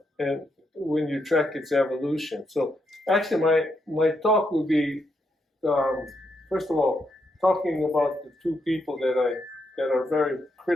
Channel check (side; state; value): both; normal; correlation 0.79